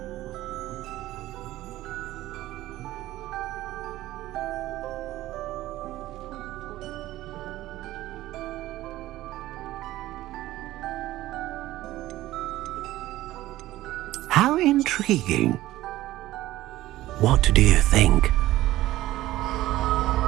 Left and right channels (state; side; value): quieter; left; 15.7 dB